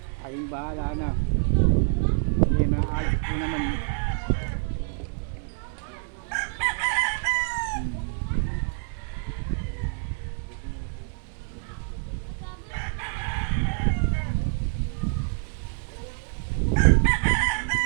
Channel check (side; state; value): left; silent; 60 dB below the other